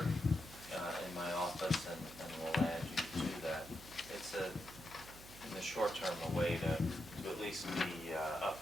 in my office, and we'll add you to that. It's in the short term, a way to at least be up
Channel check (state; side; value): noise; right; hum, 17 dB below the sound